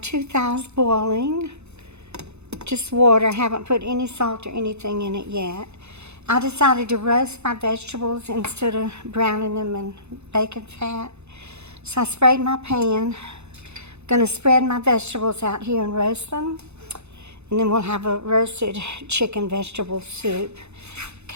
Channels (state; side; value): late; left; 0.81 ms